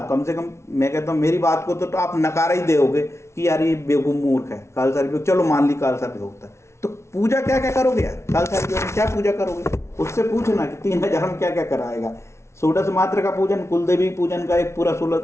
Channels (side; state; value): right; late; 0.13 ms